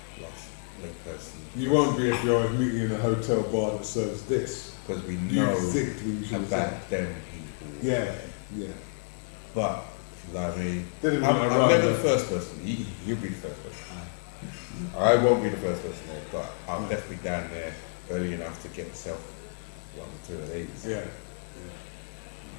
late person. You won't be if you're meeting in a hotel bar that serves this. Because we know about them people. But, I mean, I'm never the first person. You'll be the first person. I won't be the first person there, but I'm definitely down there early enough to get myself one or two of these.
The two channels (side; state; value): right; silent; 58 dB below the other